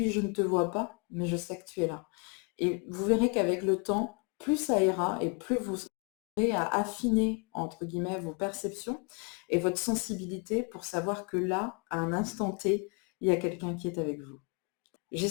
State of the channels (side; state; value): right; quieter; 35.4 dB